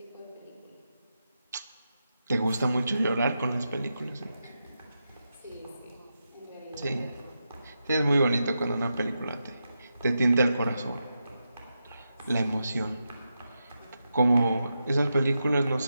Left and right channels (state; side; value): inverted; both; correlation -0.88